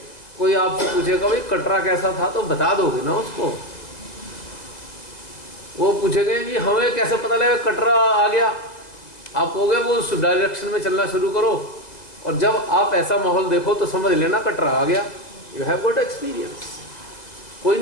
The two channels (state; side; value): late; right; 1.9 ms